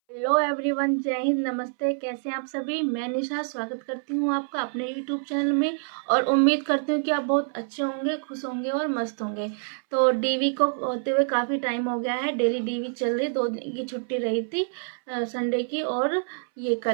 Hello everyone, जय हिंद, नमस्ते। कैसे हैं आप सभी। मैं निशा स्वागत करती हूँ आपका अपने यूट्यूब चैनल में और उम्मीद करती हूँ कि आप बहुत अच्छे होंगे, खुश होंगे और मस्त होंगे। तो डीवी को होते हुए काफ़ी टाइम हो गया है। डेली डीवी चल रही, 2 दिन की छुट्टी रही थी, संडे की और ये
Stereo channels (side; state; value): left; silent; 61 dB below the other